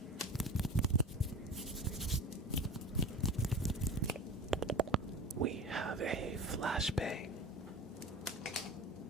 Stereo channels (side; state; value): both; normal; correlation 0.33